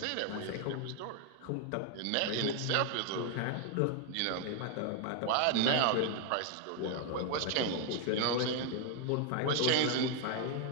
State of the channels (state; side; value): different; both; correlation 0.01